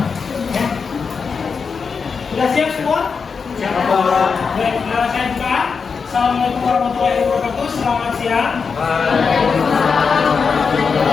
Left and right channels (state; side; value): quieter; right; 5.5 dB